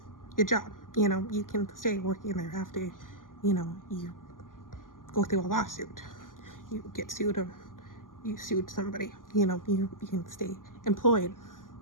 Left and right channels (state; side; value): late; right; 0.90 ms